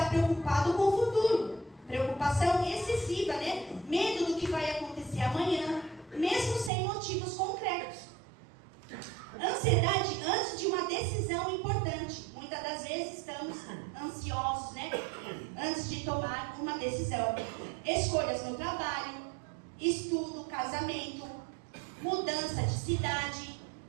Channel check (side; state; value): left; drops out; at 6.7 s